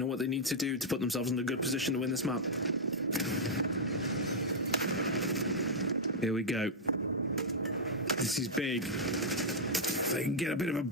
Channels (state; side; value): normal; both; correlation -0.04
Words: what they need to do to put themselves in a good position to win this map. Here we go. This is big. If they can get a bit of a